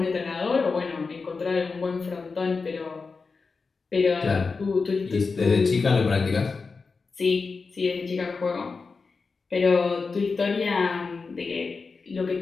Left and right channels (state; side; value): quieter; right; 4.5 dB